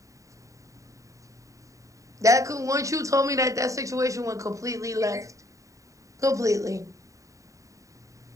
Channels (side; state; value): left; late; 0.16 ms